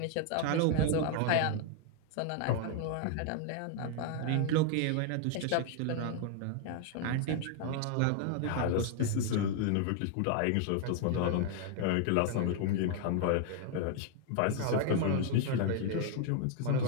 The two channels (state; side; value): different; both; correlation 0.00